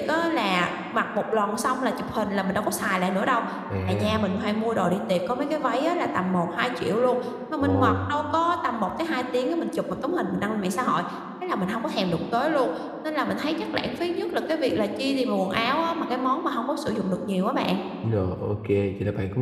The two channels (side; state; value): both; identical; correlation 1.00